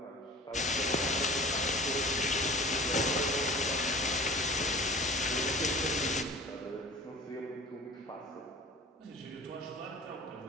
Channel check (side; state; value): both; normal; correlation 0.42